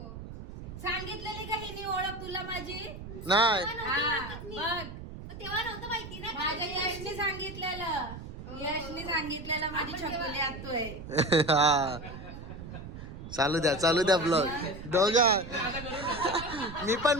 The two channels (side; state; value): right; noise; rumble, 11 dB below the sound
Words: सांगितलेली का हिने ओळख तुला माझी? नाही तेव्हा नव्हतं माहिती ना. माझ्या यशने सांगितलेलं, यशने सांगितलेलं माझी छकुली आत्तू आहे. हा चालू द्या ब्लॉग दोघा. मी